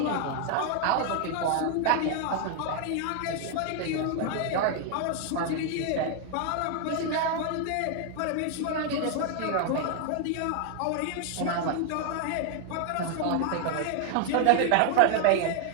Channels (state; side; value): different; both; correlation 0.00